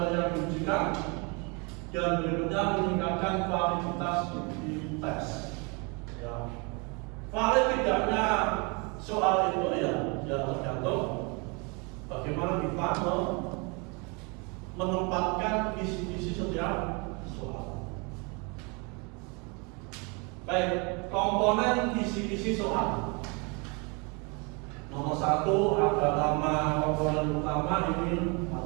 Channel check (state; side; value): quieter; left; 31.2 dB